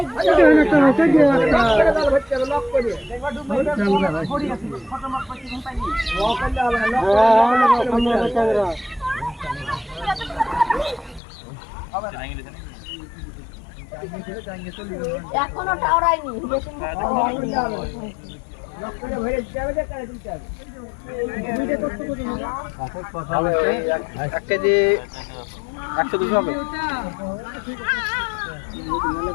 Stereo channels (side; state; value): right; drops out; at 11.2 s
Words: এখনো টাওরাইনি এক কেজি 100-200 হবে।